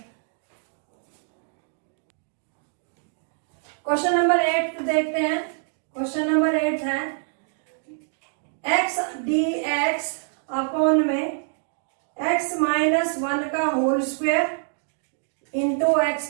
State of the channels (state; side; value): silent; left; digital silence